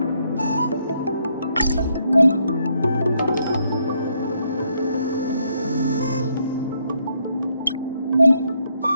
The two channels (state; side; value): inverted; both; correlation -0.74